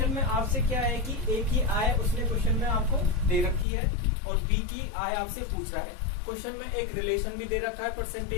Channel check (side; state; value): right; drops out; at 3.7 s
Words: में आपसे क्या है कि ए की आय उसने क्वेश्चन में आपको दे रखी है और बी की आय आपसे पूछ रहा है। क्वेश्चन में एक रिलेशन भी दे रखा है